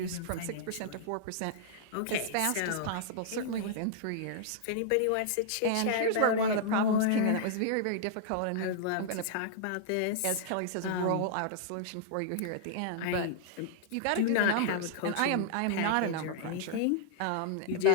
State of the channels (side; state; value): both; different; correlation -0.01